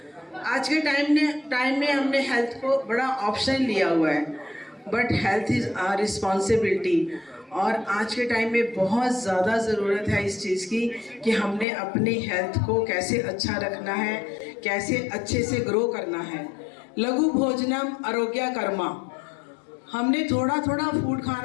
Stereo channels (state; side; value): drops out; right; at 11.7 s